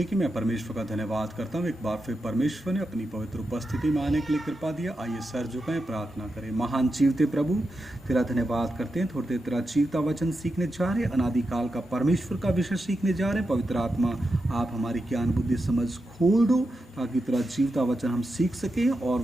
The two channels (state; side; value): normal; both; correlation 0.88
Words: की। मैं परमेश्वर का धन्यवाद करता हूँ। एक बार फिर परमेश्वर ने अपनी पवित्र उपस्थिति में आने के लिए कृपा दिया। आइए सर झुकाएं, प्रार्थना करें। महान जीवते प्रभु, तेरा धन्यवाद करते हैं। थोड़ी देर तेरा जीवता वचन सीखने जा रहे हैं। अनादिकाल का परमेश्वर का विषय सीखने जा रहे हैं। पवित्र आत्मा, आप हमारी ज्ञान बुद्धि समझ खोल दो ताकि तेरा जीवता वचन हम सीख सकें और